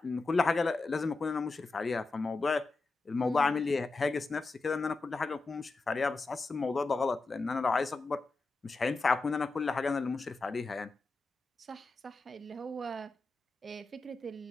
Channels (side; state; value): right; quieter; 3.7 dB